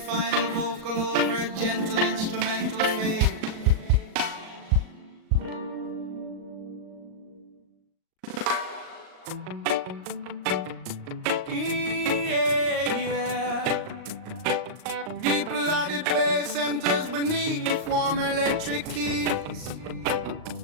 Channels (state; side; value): late; left; 38 ms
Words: vocal over a gentle instrumental fade. Yeah, yeah. Deep melodic bass enters beneath warm electric keys.